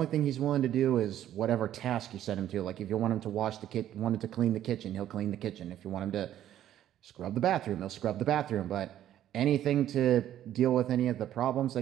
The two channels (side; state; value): left; quieter; 11.7 dB